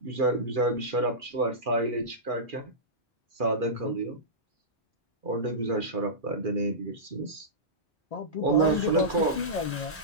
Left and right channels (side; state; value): both; normal; correlation -0.17